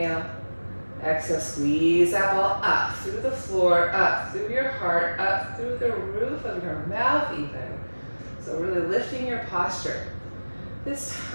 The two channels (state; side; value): inverted; both; correlation -1.00